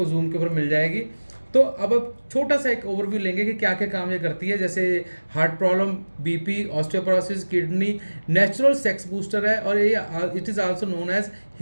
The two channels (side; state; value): both; inverted; correlation -1.00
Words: जूम के ऊपर मिल जाएगी। तो अब छोटा सा एक ओवरव्यू लेंगे कि क्या क्या काम ये करती है। जैसे heart problem, BP, osteoporosis, kidney, natural sex booster है, और ये it is also known as